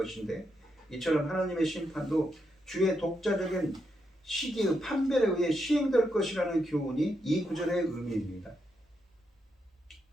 이처럼 하나님의 심판도 주의 독자적인 시기의 판별에 의해 시행될 것이라는 교훈이 이 구절의 의미입니다.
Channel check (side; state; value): both; normal; correlation 0.82